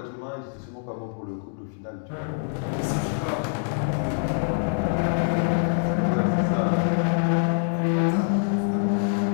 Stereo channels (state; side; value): silent; right; digital silence